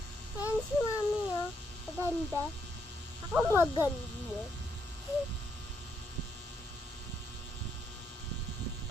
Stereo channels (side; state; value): both; normal; correlation 0.76